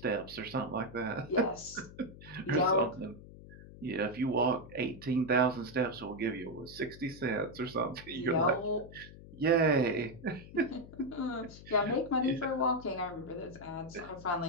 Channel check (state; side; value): noise; left; hum, 17 dB below the sound